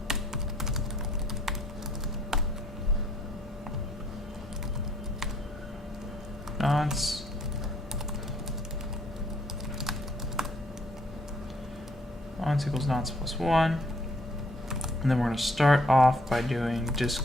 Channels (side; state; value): both; normal; correlation 0.64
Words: Nonce. Nonce equals nonce plus 1. And then we're going to start off by doing